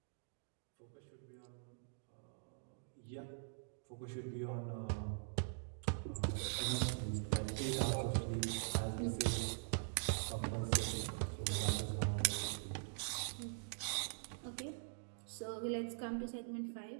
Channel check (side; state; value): left; silent; digital silence